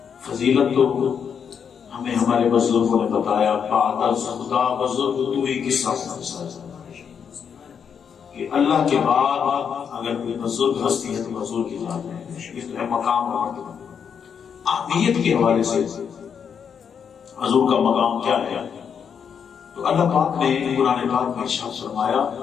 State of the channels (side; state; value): right; quieter; 7.2 dB